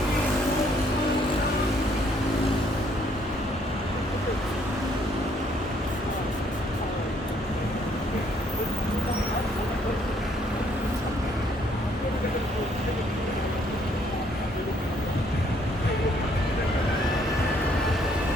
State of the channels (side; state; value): both; normal; correlation 0.66